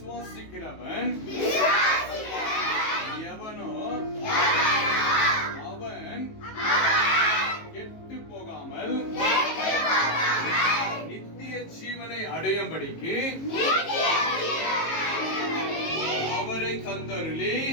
எவனோ அவன் கெட்டு போகாமல் நித்திய ஜீவனை அடையும்படிக்கு அவரை தந்தருளி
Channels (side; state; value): right; late; 18 ms